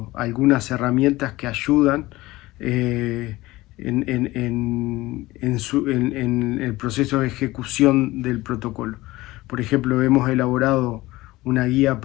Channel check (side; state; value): right; quieter; 18.9 dB